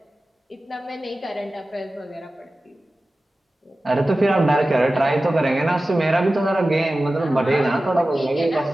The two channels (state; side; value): normal; both; correlation 0.95